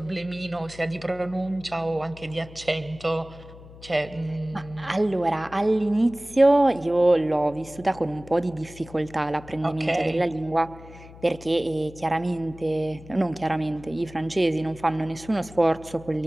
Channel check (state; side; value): noise; left; hum, 18 dB below the sound